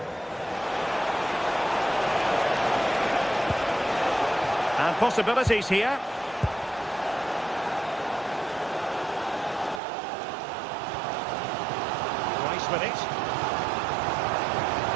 And possibilities here. Rice with it.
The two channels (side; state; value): left; drops out; at 9.8 s